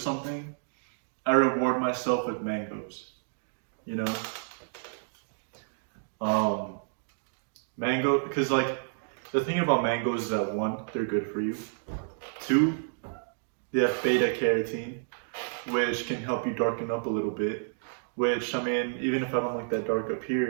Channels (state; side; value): silent; left; digital silence